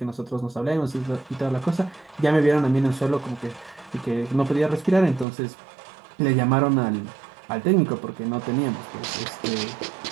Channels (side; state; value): left; drops out; at 5.2 s